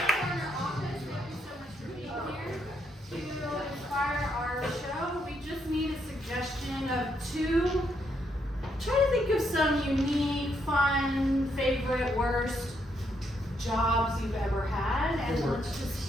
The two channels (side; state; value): both; normal; correlation 0.76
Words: Try to think of some unique, fun, favorite, worst jobs you've ever had, and let's